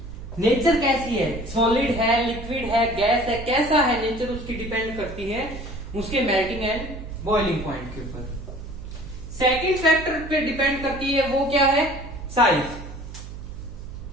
नेचर कैसी है, सॉलिड है, लिक्विड है, गैस है, कैसा है नेचर, उसकी डिपेंड करती है उसके मेल्टिंग एंड बॉइलिंग पॉइंट के ऊपर। सेकंड फैक्टर पे डिपेंड करती है, वो क्या है, साइज।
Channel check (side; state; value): right; noise; hum, 12 dB below the sound